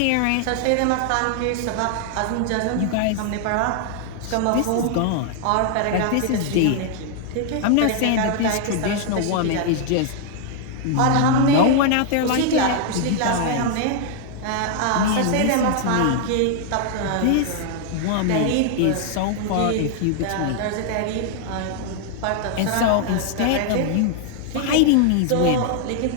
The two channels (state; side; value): different; both; correlation 0.00